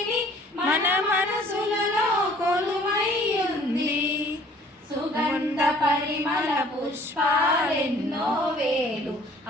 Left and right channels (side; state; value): both; normal; correlation 0.55